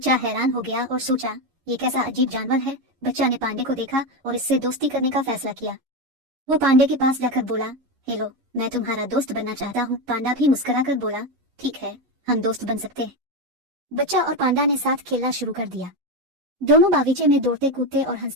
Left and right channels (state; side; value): late; left; 11 ms